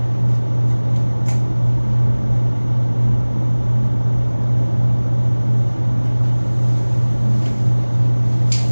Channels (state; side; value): inverted; both; correlation -1.00